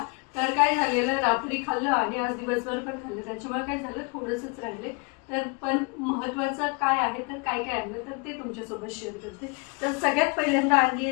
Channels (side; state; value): right; quieter; 31.6 dB